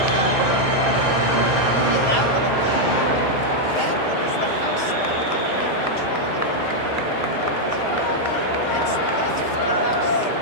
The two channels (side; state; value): right; late; 5.1 ms